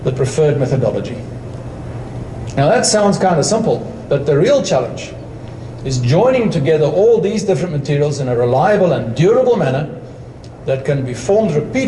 the preferred methodology. Now that sounds kind of simple, but the real challenge is joining together all these different materials in a reliable and durable manner that can be formed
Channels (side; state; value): both; identical; correlation 1.00